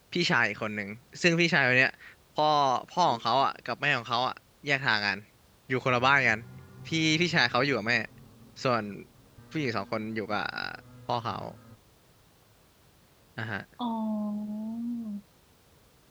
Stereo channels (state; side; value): identical; both; correlation 1.00